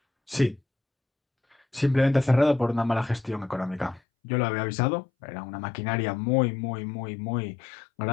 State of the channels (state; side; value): drops out; right; at 4.0 s